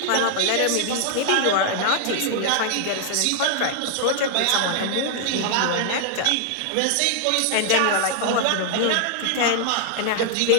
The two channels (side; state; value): both; different; correlation 0.00